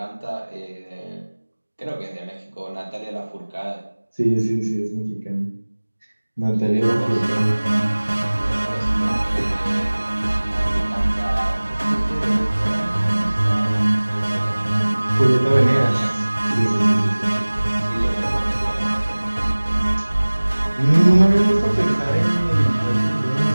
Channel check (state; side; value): inverted; both; correlation -1.00